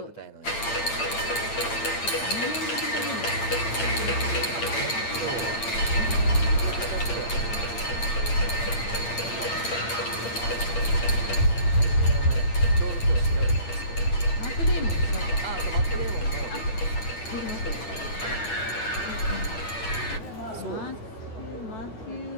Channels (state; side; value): late; right; 8.8 ms